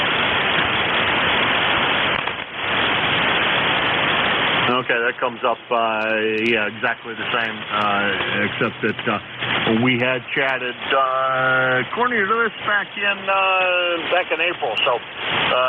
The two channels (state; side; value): identical; both; correlation 1.00